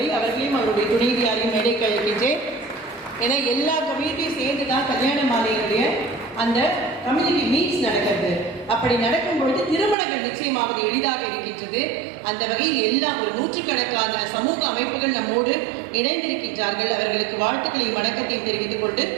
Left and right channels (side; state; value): left; drops out; at 10.0 s